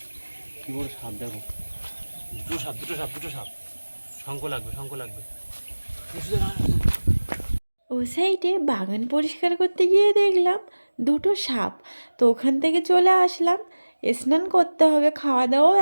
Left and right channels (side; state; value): both; inverted; correlation -1.00